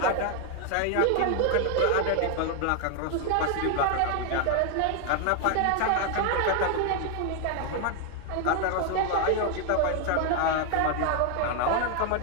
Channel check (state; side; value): different; both; correlation 0.00